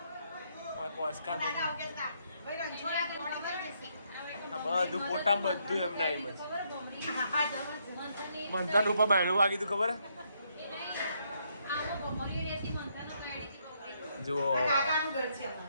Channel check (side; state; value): both; inverted; correlation -0.74